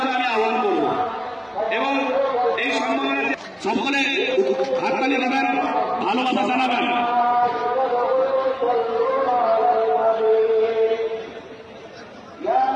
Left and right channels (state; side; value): identical; both; correlation 1.00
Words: আমি আহ্বান করব এবং এই সম্মেলনে সকলে হাততালি দেবেন, ভালোবাসা জানাবেন।